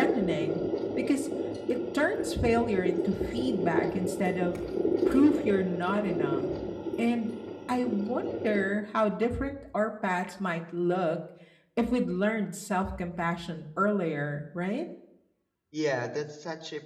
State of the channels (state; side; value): identical; both; correlation 1.00